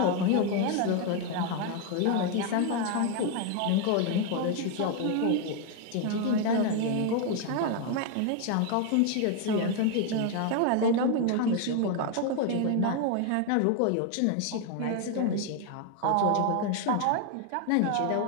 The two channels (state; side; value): different; both; correlation 0.01